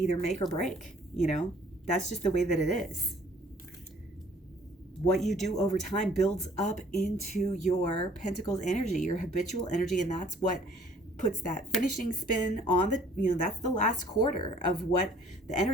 make or break, that's just the way that it is. What you do over time builds up into your pentacles energy, your habitual energy, and that's what puts that finishing spin on that's the last quarter of what the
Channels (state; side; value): normal; both; correlation 0.56